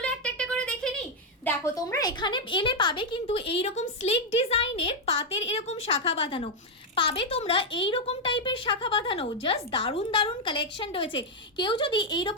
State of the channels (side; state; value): both; normal; correlation 0.01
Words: একটা একটা করে দেখে নিই। দেখো তোমরা এখানে এলে পাবে কিন্তু এইরকম স্লিক ডিজাইনের পাতের এরকম শাখা বাঁধানো পাবে, তোমরা এইরকম টাইপের শাখা বাঁধানো, জাস্ট দারুণ দারুণ কালেকশন রয়েছে। কেউ যদি